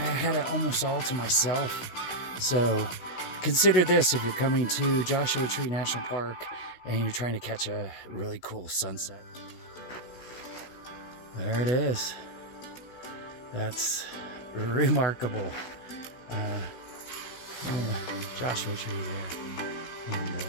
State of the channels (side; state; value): right; late; 16 ms